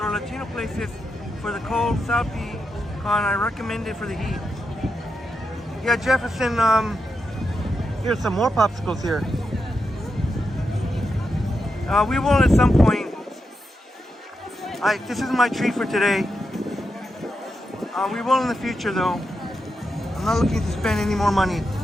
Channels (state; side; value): normal; both; correlation 0.86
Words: Latino places for the cold South Pecan. I recommend it for the heat. Yeah, Jefferson, here's some more popsicles here. We will at some point. This is my treat for today. We will in the future though. not looking to spend any more money.